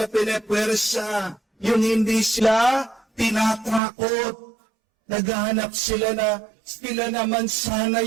pinepwersa, yung hindi sila tinatakot. Naghahanap sila na sila naman sana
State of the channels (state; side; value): drops out; left; at 3.8 s